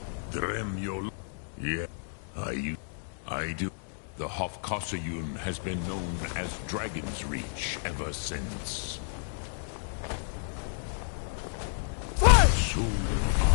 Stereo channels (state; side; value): silent; right; digital silence